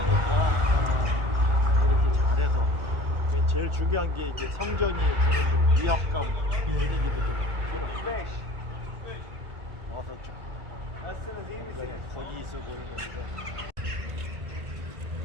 아, 이렇게 잘해서 이게 제일 중요한 게 이제 성전이 주는 그 위압감 예. 분위기도 좀 어서 좀 거기 있어 보이는데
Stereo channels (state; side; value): late; left; 1.5 ms